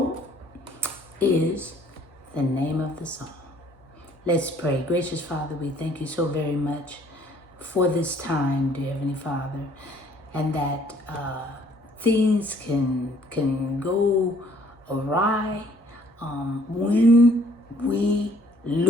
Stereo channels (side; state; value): both; normal; correlation 0.60